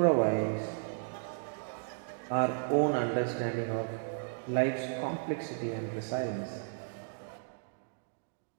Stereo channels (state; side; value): silent; left; digital silence